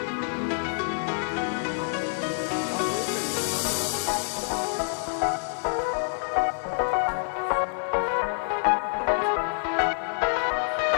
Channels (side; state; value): right; silent; digital silence